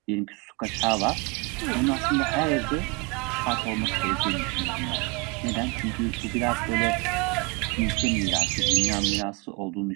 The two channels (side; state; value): left; quieter; 28.3 dB